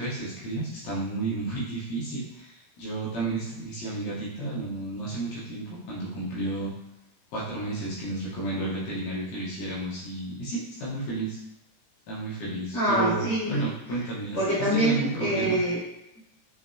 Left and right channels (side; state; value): right; late; 17 ms